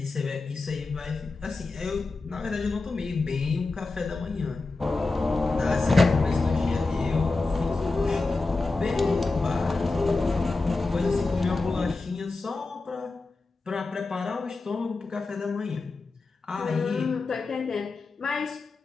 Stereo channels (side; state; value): right; quieter; 3.6 dB